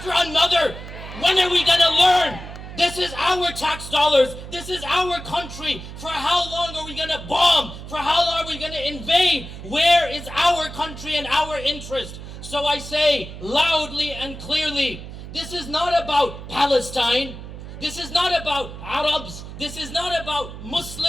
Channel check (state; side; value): noise; right; hum, 12 dB below the sound